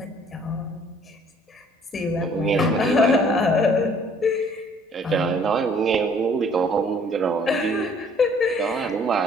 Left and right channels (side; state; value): both; normal; correlation 0.58